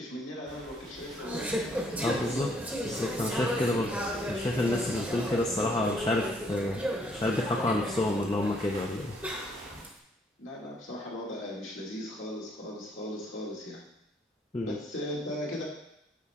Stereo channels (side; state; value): both; normal; correlation 0.67